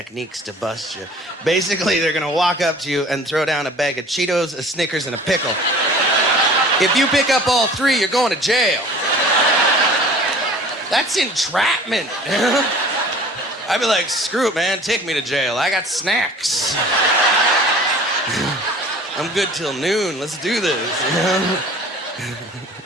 to bust you. Basically, they're gonna walk up to you and throw down a bag of Cheetos, a Snickers, and a pickle. If you pick up all 3, you're going to jail. That's entrapment. I'd be like, screw it, man, take me to jail. I got snacks. I'm good till noon. Let's do this.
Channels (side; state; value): both; normal; correlation 0.46